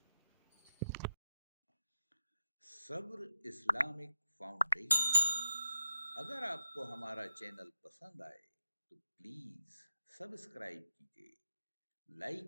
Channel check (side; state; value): both; inverted; correlation -0.84